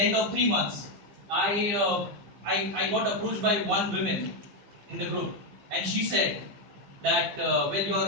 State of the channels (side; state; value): left; late; 15 ms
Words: end of 3 months, I got approached by one woman in the group, and she said that well,